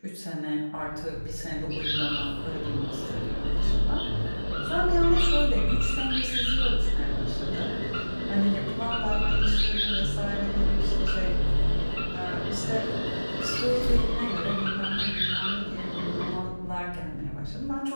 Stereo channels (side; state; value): both; inverted; correlation -1.00